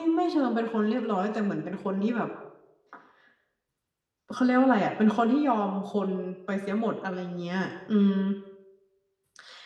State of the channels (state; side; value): identical; both; correlation 1.00